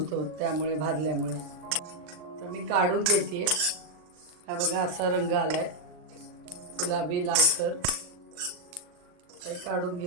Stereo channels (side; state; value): left; late; 39 ms